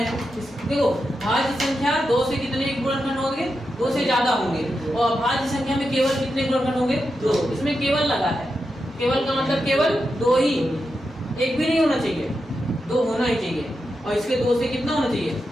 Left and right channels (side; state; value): both; normal; correlation 0.87